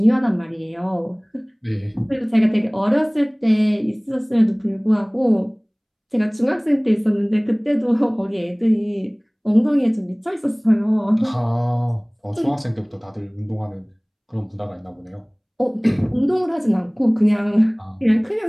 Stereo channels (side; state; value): both; identical; correlation 1.00